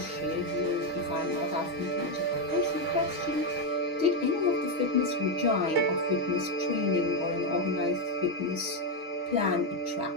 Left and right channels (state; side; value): late; left; 6.3 ms